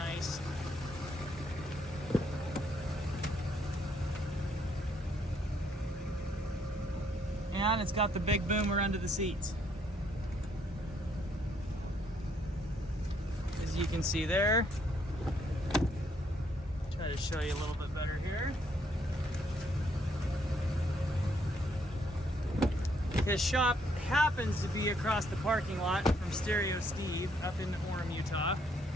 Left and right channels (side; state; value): both; normal; correlation 0.70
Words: And it's got the big boomer under the seats. As you can see there. Try to show you a little bit better here. His shop happens to be across the parking lot from Stereo Steve up in Orem, Utah.